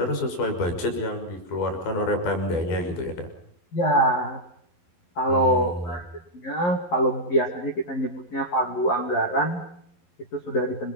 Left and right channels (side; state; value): right; late; 11 ms